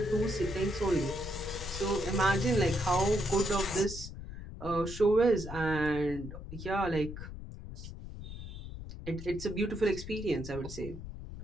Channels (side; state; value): left; noise; rumble, 10 dB below the sound